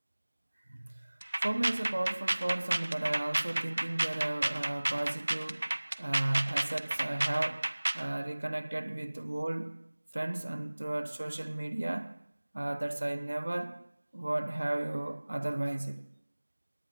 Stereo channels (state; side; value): inverted; both; correlation -1.00